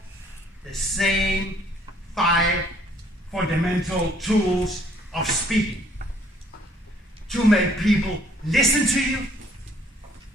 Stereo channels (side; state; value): both; normal; correlation 0.61